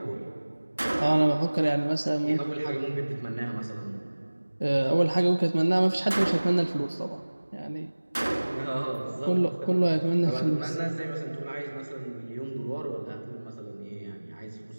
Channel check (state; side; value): inverted; both; correlation -1.00